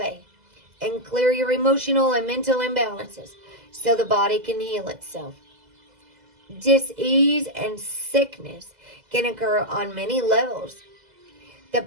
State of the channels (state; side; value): late; left; 2.0 ms